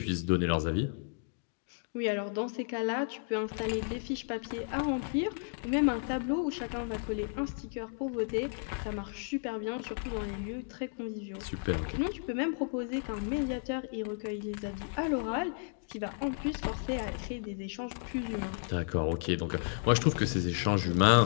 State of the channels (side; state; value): right; silent; 56 dB below the other